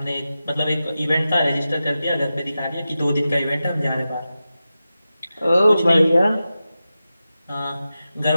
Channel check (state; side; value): inverted; both; correlation -0.93